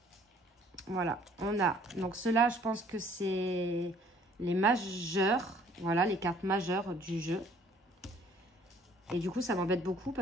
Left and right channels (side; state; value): both; normal; correlation 0.57